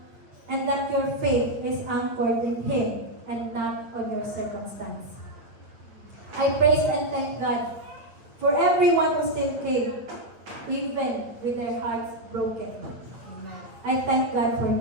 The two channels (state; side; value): late; left; 9.0 ms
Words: And that your faith is anchored in Him and not on your circumstance. I praise and thank God for everyone who still came, even with their hearts broken. I thank God for